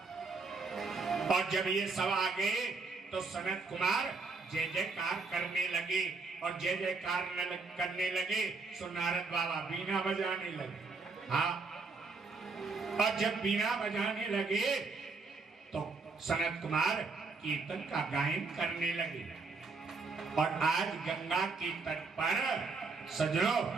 और जब ये सब आ गए तो सनत कुमार जय जयकार करने लगे, और जय जयकार करने लगे सो नारद बाबा बीना बजाने लगे। हाँ, और जब बीना बजाने लगे तो सनत कुमार कीर्तन का गायन करने लगे। और आज गंगा के तट पर सजनो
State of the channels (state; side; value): quieter; left; 4.2 dB